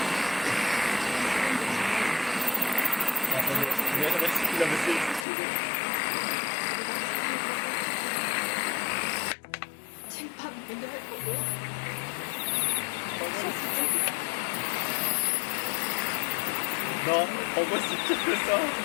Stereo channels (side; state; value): right; drops out; at 5.2 s